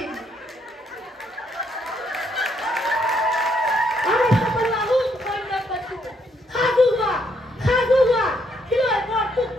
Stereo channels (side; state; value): both; normal; correlation 0.73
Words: আমি সকলো আহোম সৈন্যক কৈছো, সাজু হোৱা, সাজু হোৱা। শিলৈ